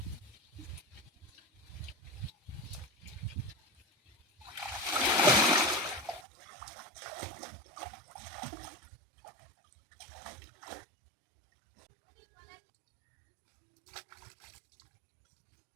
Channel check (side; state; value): left; drops out; at 6.2 s